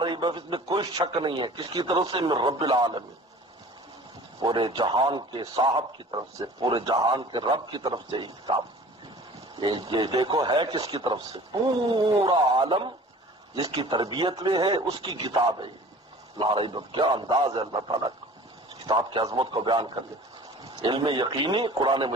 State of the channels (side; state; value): both; normal; correlation 0.45